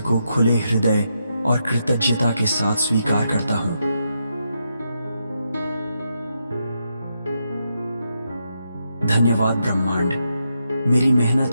खुले हृदय और कृतज्ञता के साथ स्वीकार करता हूं। धन्यवाद ब्रह्मांड, मेरी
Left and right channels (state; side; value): inverted; both; correlation -0.83